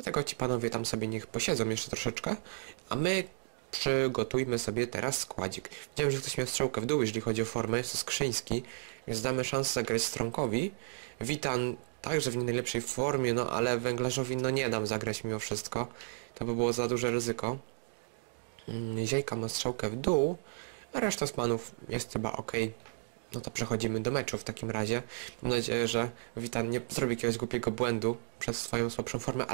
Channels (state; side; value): silent; left; digital silence